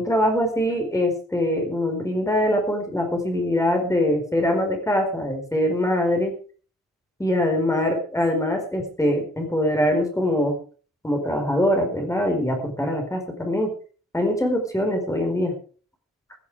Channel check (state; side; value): normal; both; correlation 0.61